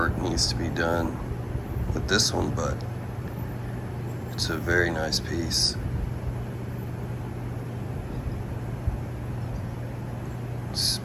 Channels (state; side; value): identical; both; correlation 1.00